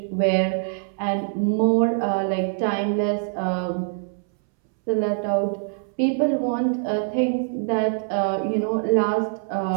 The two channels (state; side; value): silent; left; 63 dB below the other